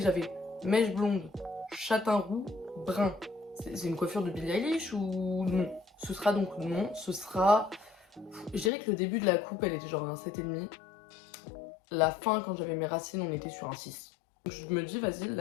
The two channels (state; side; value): drops out; right; at 8.7 s